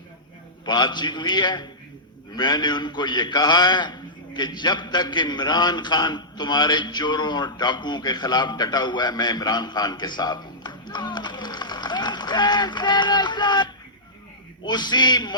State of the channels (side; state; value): both; normal; correlation -0.15